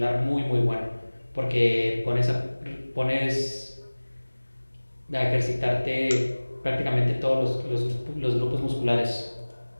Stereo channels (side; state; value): both; inverted; correlation -1.00